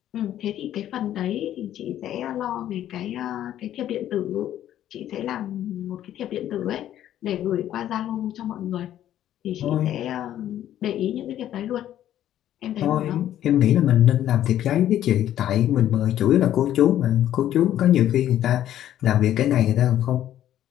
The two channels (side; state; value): right; quieter; 11.8 dB